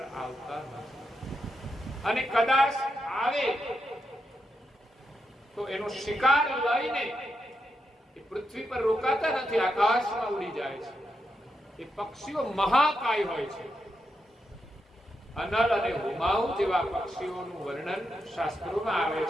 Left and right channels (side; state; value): both; normal; correlation 0.84